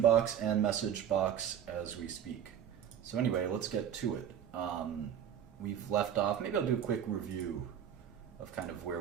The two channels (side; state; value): left; quieter; 9.2 dB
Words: and message box as we speak. So anyway, let's get to it. We've left off, maybe I'll do a quick review of kind of